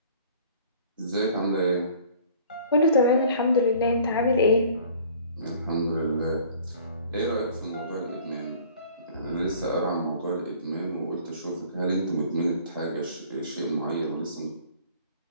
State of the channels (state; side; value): inverted; both; correlation -0.51